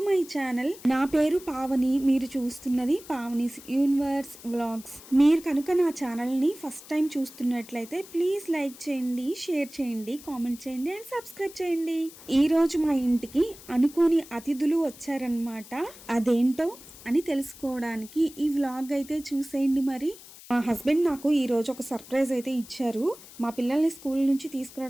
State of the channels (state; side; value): noise; left; hiss, 19 dB below the sound